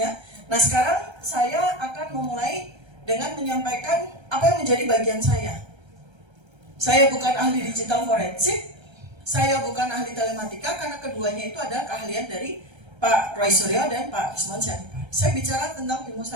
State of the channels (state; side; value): late; left; 1.3 ms